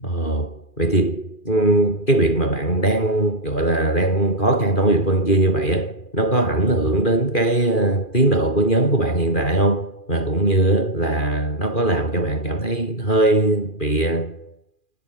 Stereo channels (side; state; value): right; late; 2.4 ms